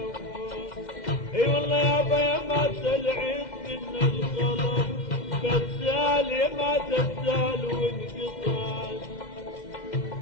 اي والله يابا يا ما تلعب من القلم كالسال يا ما تزال وانقطع.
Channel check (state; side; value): late; right; 2.1 ms